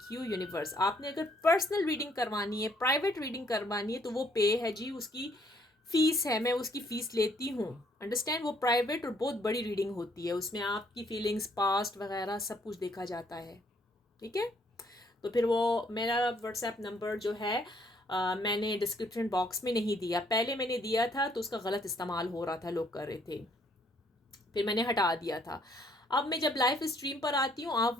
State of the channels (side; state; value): both; normal; correlation 0.67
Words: you universe. आपने अगर पर्सनल रीडिंग करवानी है, प्राइवेट रीडिंग करवानी है, तो वो पे है जी, उसकी फीस है, मैं उसकी फ़ीस लेती हूँ, अंडरस्टैंड। वो प्राइवेट और बहुत बड़ी रीडिंग होती है, उसमें आपकी फीलिंग्स, पास्ट वगैरह सब कुछ देखा जाता है। ठीक है। तो फिर वो मेरा व्हाट्सएप नंबर जो है मैंने डिस्क्रिप्शन बॉक्स में नहीं दिया। पहले मैंने दिया था तो उसका गलत इस्तेमाल हो रहा था, लोग कर रहे थे, फिर मैंने हटा दिया था। अब मैं जब लाइव स्ट्रीम पर आती हूँ, आप